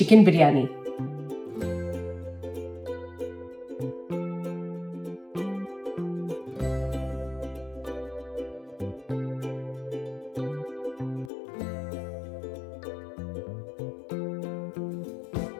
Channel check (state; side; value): drops out; right; at 11.3 s